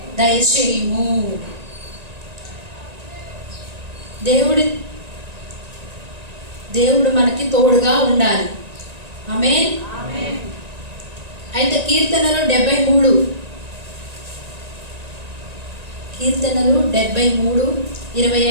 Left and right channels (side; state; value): left; late; 1.9 ms